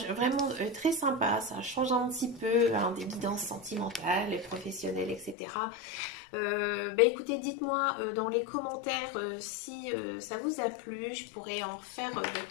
vraiment très sympa. Ça change un petit peu hein, des guidances sentimentales, et professionnelles, etc. Ben écoutez, dites-moi dans les commentaires si ça vous a plu. Je pourrais en faire de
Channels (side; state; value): right; drops out; at 5.4 s